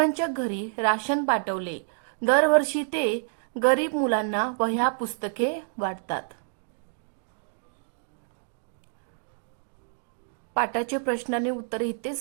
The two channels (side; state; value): left; silent; 59 dB below the other